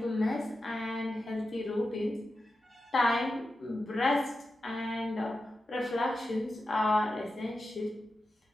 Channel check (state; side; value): normal; both; correlation 0.91